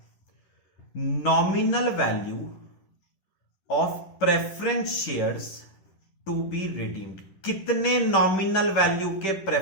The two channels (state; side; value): late; right; 10 ms